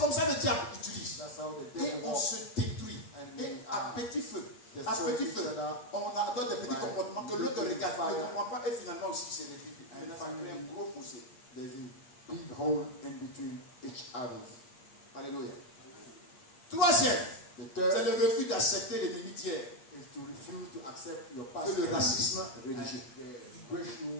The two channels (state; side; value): late; right; 8.5 ms